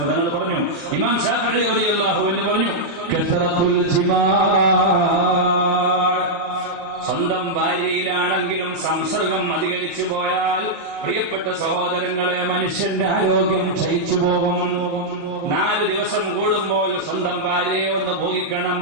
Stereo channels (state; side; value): late; left; 35 ms